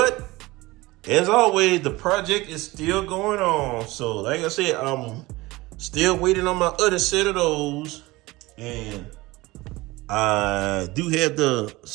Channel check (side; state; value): left; quieter; 20.6 dB